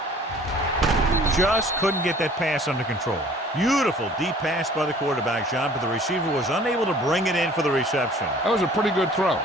Just couldn't get that pass under control. Beautiful deep pass by the quarterback, John, but the receiver was unable to bring it in for the reception. That was a pretty good throw,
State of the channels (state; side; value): normal; both; correlation 0.51